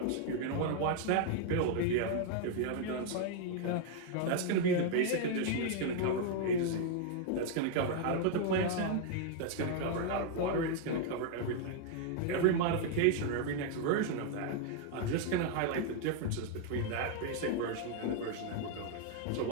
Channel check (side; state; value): both; different; correlation 0.00